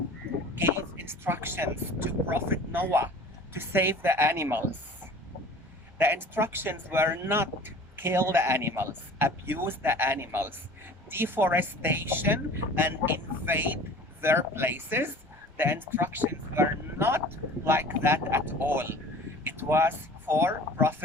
gave instructions to Prophet Noah to save the animals, the instructions were not kill the animals, abuse the animals, deforestation, and invade their places. The instructions were not like that at all. It was for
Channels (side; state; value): both; normal; correlation 0.43